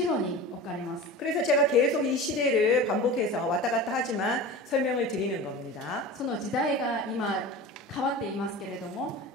ろに置かれます。 그래서 제가 계속 이 시대를 반복해서 왔다 갔다 하지만 설명을 드리는 겁니다. その時代が今変わっていますけれども、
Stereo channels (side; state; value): both; normal; correlation 0.33